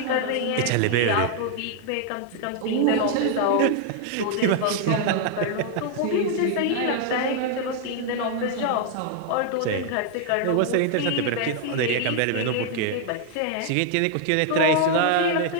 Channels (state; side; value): different; both; correlation 0.00